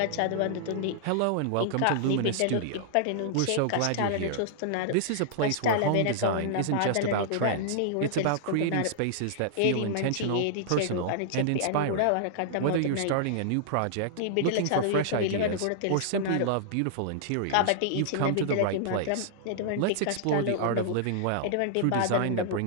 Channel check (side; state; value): both; different; correlation -0.01